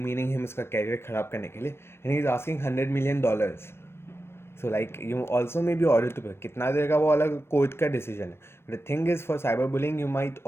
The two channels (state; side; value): late; right; 0.12 ms